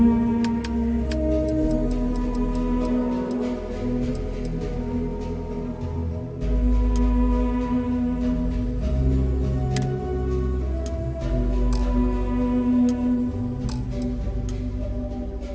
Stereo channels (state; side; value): identical; both; correlation 1.00